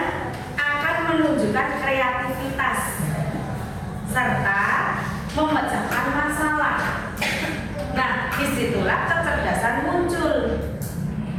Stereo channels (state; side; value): identical; both; correlation 1.00